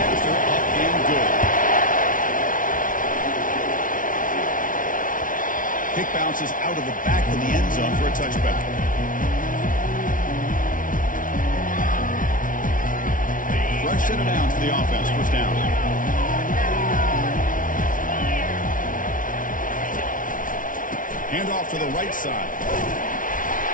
after, up and good. Kick bounces out of the back of the end zone for a touchback. Fresh set of downs for the offense, first down. Hand off to the right side.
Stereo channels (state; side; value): late; right; 0.38 ms